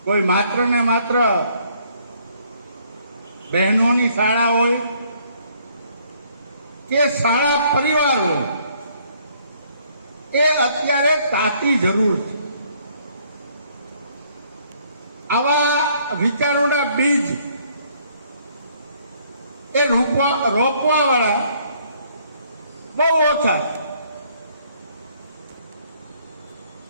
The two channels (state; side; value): inverted; both; correlation -0.64